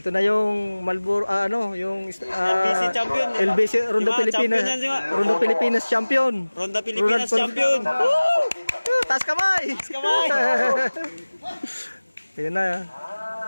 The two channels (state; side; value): inverted; both; correlation -1.00